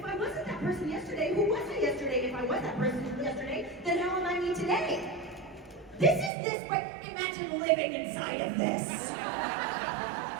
I wasn't that person yesterday, who was I yesterday? If I was that person yesterday, then how am I me today? This is this, but imagine living inside of this.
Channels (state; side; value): drops out; left; at 6.3 s